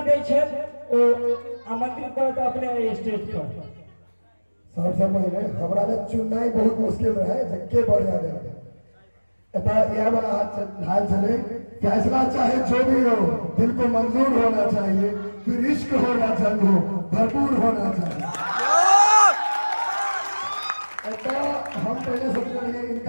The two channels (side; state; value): both; inverted; correlation -1.00